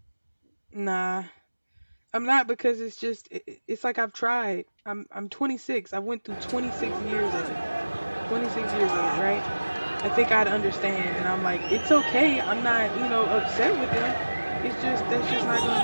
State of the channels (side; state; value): both; inverted; correlation -1.00